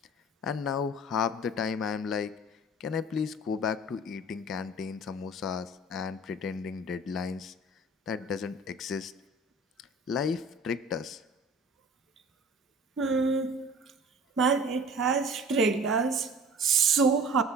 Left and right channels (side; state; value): both; normal; correlation 0.45